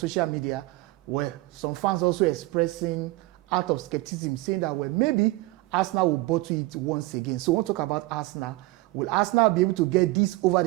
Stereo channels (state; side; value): quieter; left; 20.0 dB